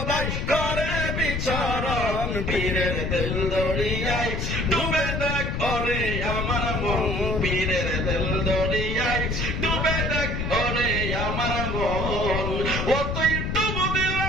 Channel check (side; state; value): left; noise; rumble, 2 dB below the sound